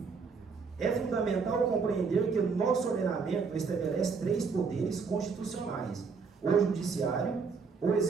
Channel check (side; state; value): left; quieter; 5.2 dB